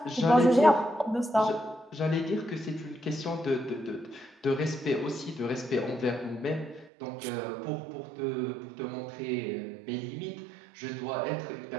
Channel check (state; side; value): drops out; left; at 6.9 s